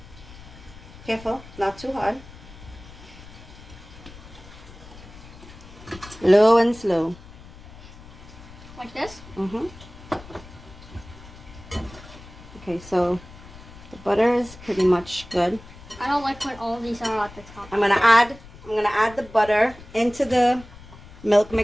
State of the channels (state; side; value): noise; left; rumble, 18 dB below the sound